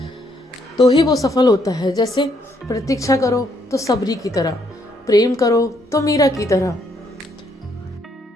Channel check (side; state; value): both; normal; correlation 0.72